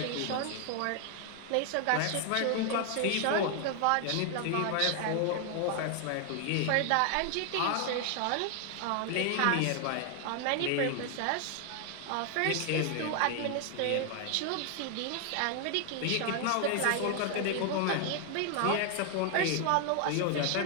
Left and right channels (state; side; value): different; both; correlation 0.00